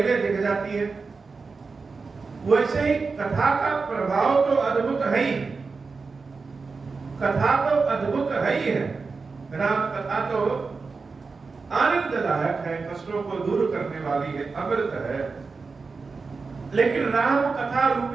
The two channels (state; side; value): quieter; left; 4.5 dB